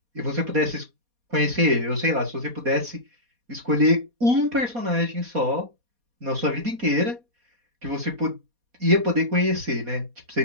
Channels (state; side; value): late; left; 4.2 ms